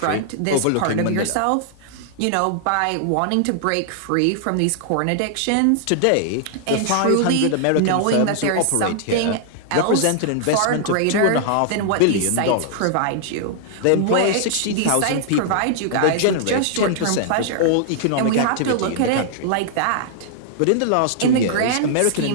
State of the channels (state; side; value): different; both; correlation -0.01